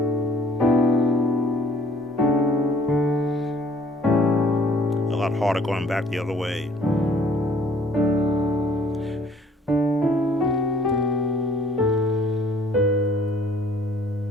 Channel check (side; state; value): both; normal; correlation 0.58